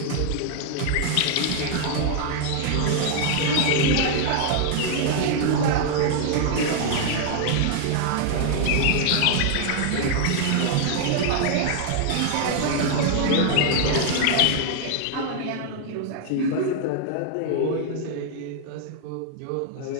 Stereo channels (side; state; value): both; different; correlation 0.00